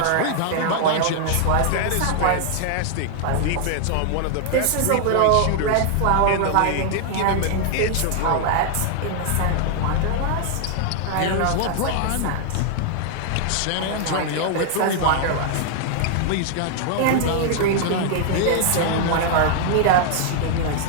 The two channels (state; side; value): different; both; correlation 0.00